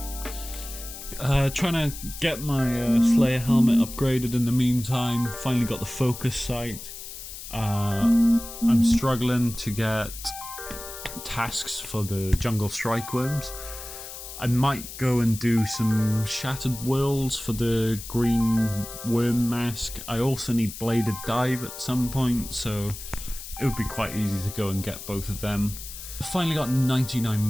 Trying to get my Slayer helmet upgraded in the meantime. Finally got the focus sight. I'm struggling to get tasks for the jungle strike worms. I might go and do some shattered worlds for the green worm mask. I also need bladed dive at some point, so it would be quite easy to go and get both of them. I finally got 99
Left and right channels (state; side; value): noise; left; hiss, 11 dB below the sound